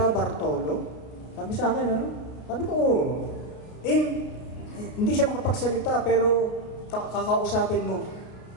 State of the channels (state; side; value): late; right; 33 ms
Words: Bartolo? Sabi sa akin, ano? Sabi ko, hindi siya makapagsalita, pero kakausapin mo.